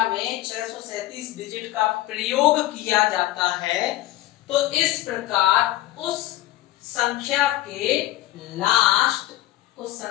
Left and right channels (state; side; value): quieter; right; 15.8 dB